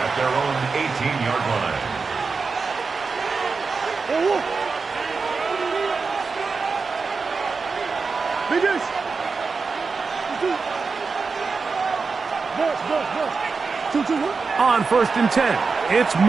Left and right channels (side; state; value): left; quieter; 4.7 dB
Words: their own 18-yard line. On 1st and 10, it's